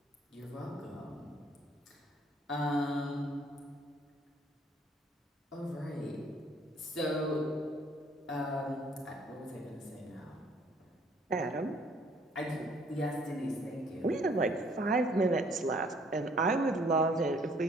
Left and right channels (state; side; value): normal; both; correlation 0.61